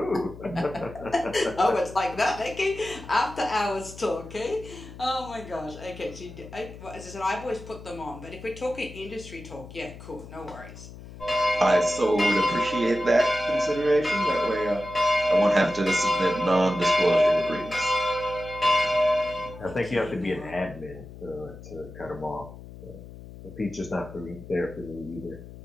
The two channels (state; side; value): noise; left; hum, 15 dB below the sound